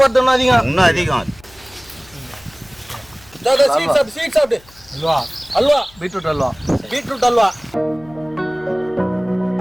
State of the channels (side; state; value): left; noise; hum, 26 dB below the sound